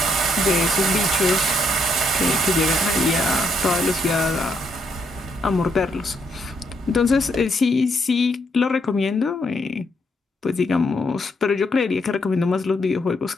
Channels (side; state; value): both; normal; correlation 0.75